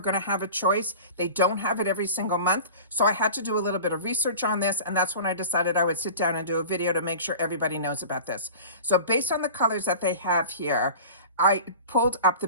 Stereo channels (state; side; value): inverted; both; correlation -0.37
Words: to have a choice. They don't have it every single month. So I had to do a little bit of research on this, and that's when I decided I would sit down and do a video to make sure everybody knows about this. So based on the colors that they have here, I pulled up the